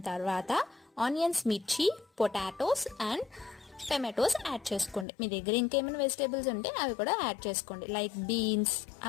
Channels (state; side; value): drops out; right; at 5.1 s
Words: తర్వాత ఆనియన్స్, మిర్చి, పొటాటోస్ అండ్ టమాటోస్ యాడ్ చేసుకోండి. మీ దగ్గర ఇంకేమైనా వెజిటేబుల్స్ ఉంటే అవి కూడా యాడ్ చేసుకోండి, లైక్ బీన్స్.